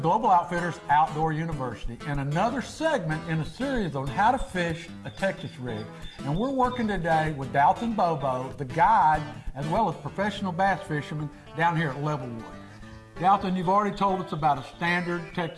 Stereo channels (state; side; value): identical; both; correlation 1.00